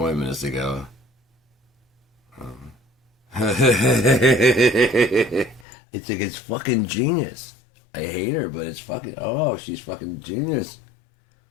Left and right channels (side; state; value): right; drops out; at 5.7 s